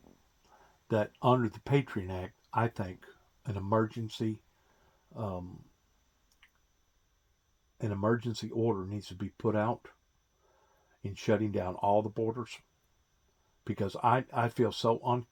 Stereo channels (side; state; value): both; identical; correlation 1.00